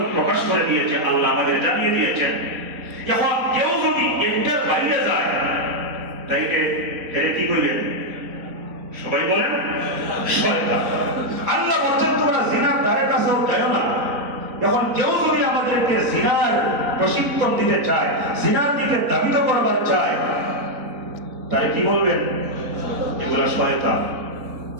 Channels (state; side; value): late; left; 3.9 ms